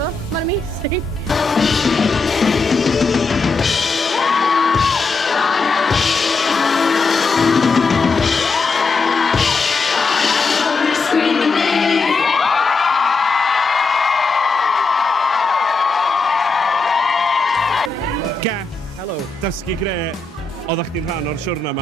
mae'n amazing. Helo. Dysgu gre, oeddech chdi'n rhan o'r siwrna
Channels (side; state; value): right; quieter; 4.0 dB